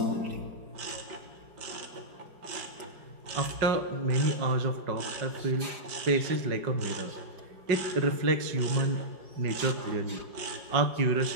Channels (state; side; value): late; left; 4.9 ms